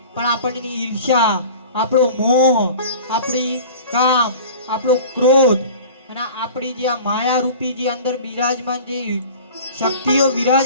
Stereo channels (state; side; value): inverted; both; correlation -0.40